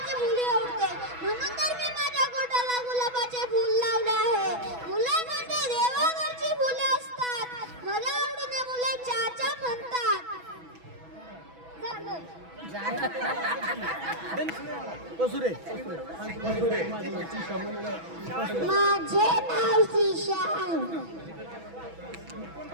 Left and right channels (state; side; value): late; left; 6.1 ms